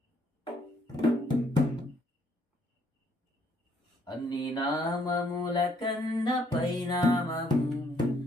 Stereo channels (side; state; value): both; normal; correlation 0.67